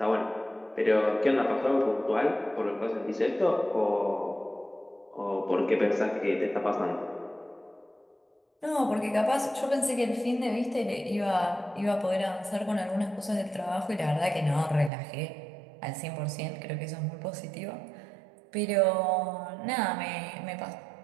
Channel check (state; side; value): drops out; left; at 14.9 s